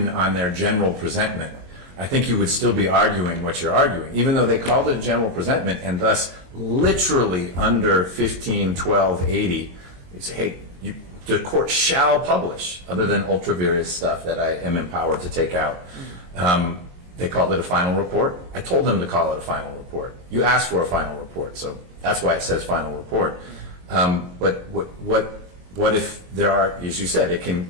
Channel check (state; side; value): late; left; 22 ms